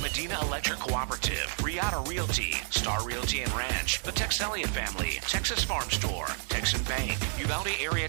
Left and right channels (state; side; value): silent; left; 58 dB below the other